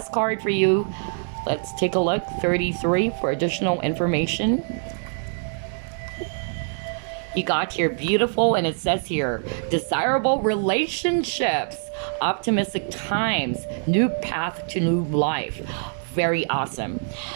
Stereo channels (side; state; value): left; silent; digital silence